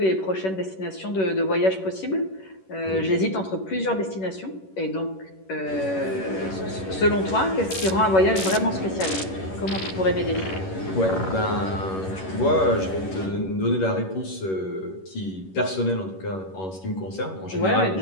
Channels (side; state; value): right; late; 11 ms